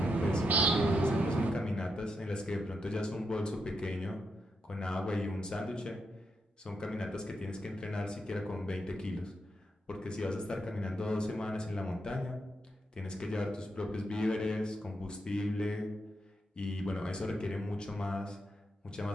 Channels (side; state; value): both; normal; correlation 0.82